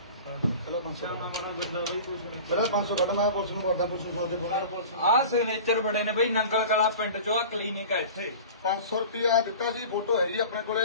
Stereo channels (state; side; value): inverted; both; correlation -0.38